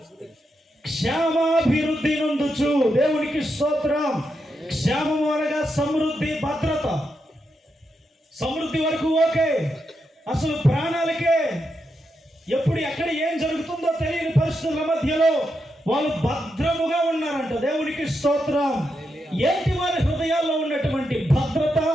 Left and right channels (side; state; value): both; normal; correlation 0.84